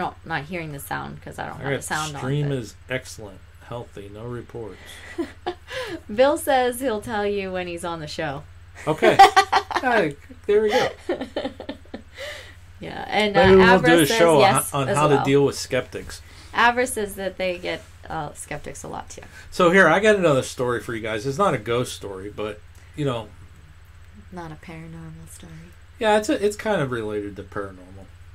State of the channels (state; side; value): identical; both; correlation 1.00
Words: hearing the sound because I don't have the sound on. Stream is excellent, healthy, no reports. Bill says he'll tell you when he's on the show. Okay. There we go. Yeah, and maybe we'll do a says show yes on how to deal with skeptics. Avra says that they get skeptics a lot too. So here, I got another story for you guys. It's not a ghost story, but not a paranormal story. Yeah, it's kind of related to paranormal.